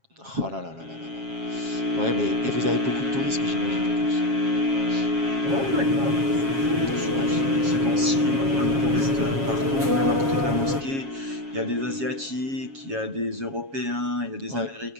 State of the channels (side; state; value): left; late; 7.3 ms